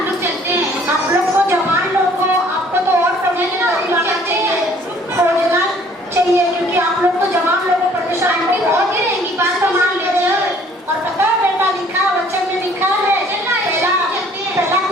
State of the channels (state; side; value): normal; both; correlation 0.57